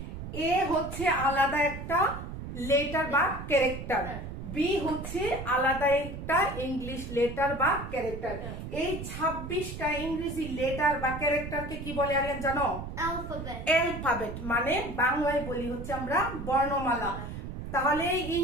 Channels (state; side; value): noise; right; rumble, 8 dB below the sound